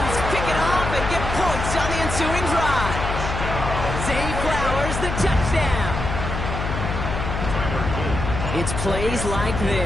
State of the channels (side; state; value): left; noise; hum, 4 dB below the sound